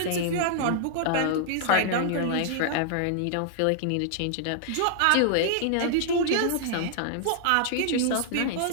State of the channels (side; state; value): both; different; correlation -0.01